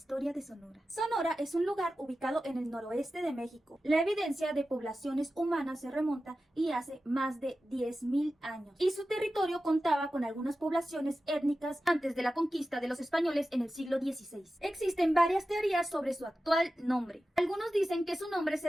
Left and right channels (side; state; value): both; normal; correlation 0.93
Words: de Sonora. Sonora es un lugar ubicado en el noroeste de México. La evidencia de poblaciones humanas se remonta y hace más de 10.000 años. Y su territorio contaba con algunas poblaciones étnicas antes de la conquista de los españoles en el siglo XVI. Existen varias teorías sobre su actual nombre. Algunos dicen que su nombre se